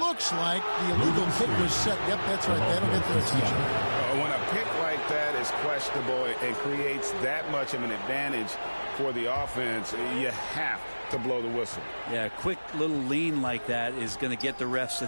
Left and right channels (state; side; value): inverted; both; correlation -1.00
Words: like the illegal pick was set. Yep, that's right. That'll get their attention. When a pick like that is questionable and creates that much of an advantage for the offense, you have to blow the whistle. Yeah, a quick little lean like that is going to get the ref's